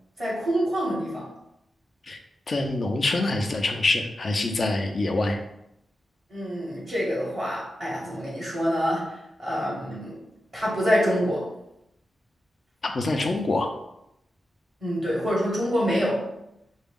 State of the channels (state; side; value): normal; both; correlation 0.90